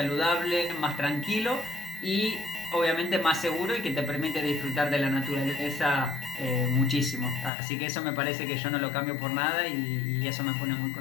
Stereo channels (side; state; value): right; drops out; at 7.5 s